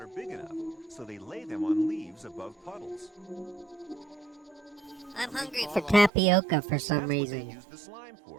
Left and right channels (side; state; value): left; drops out; at 6.1 s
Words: big enough, so they lay them on leaves above puddles. I'm hungry for tapioca for some reason. That's what they use the slime